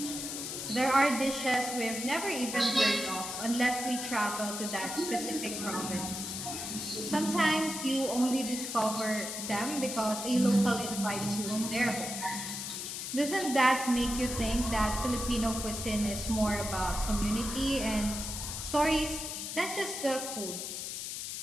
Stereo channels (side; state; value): left; noise; hiss, 5 dB below the sound